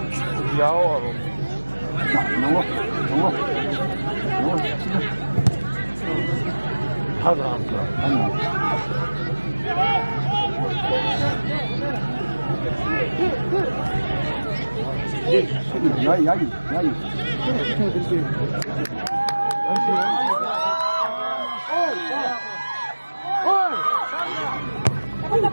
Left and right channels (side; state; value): both; inverted; correlation -1.00